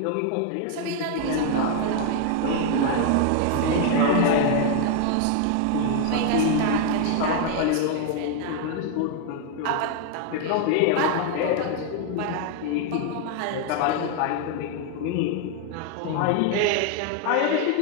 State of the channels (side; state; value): both; different; correlation 0.01